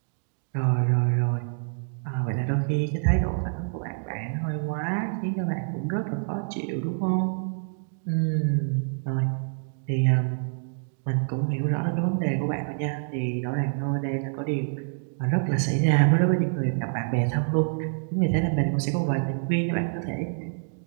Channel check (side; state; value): left; silent; digital silence